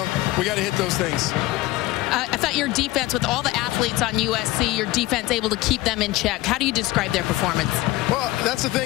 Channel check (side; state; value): right; quieter; 18.1 dB